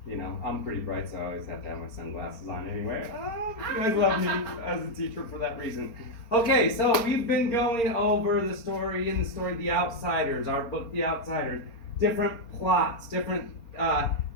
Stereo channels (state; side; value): late; right; 4.3 ms